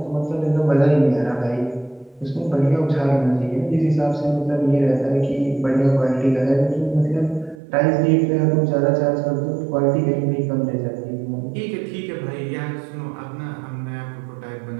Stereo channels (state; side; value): drops out; left; at 7.6 s